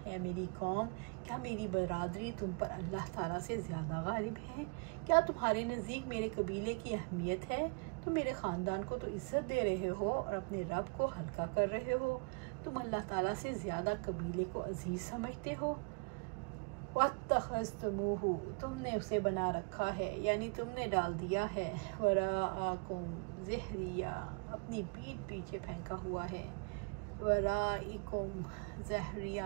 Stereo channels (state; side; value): quieter; left; 35.7 dB